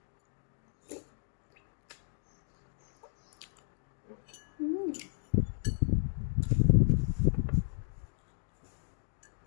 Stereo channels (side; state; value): right; silent; digital silence